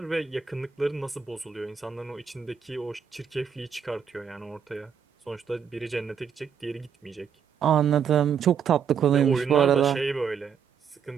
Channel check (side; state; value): left; quieter; 7.2 dB